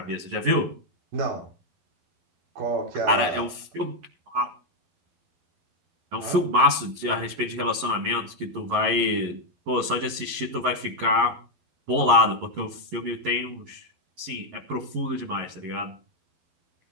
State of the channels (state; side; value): late; left; 11 ms